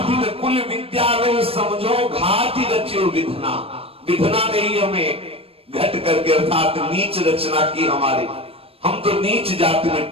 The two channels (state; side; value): late; left; 0.28 ms